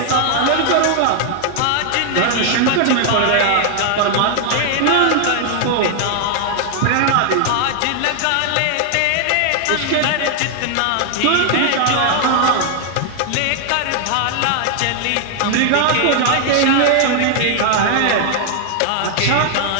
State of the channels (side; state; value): both; different; correlation 0.00